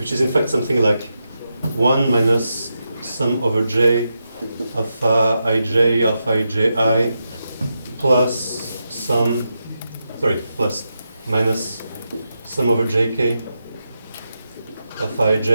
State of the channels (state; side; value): inverted; both; correlation -0.87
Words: is in fact something like 1 minus sum over j alpha iji plus plus minus sum over jk alpha